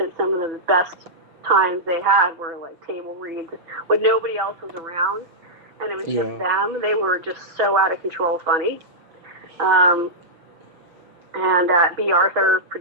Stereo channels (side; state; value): left; late; 6.1 ms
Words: some of the best times they had were like table reads when nobody else was around, and it was just them. They were just so out of control funny. And B. Arthur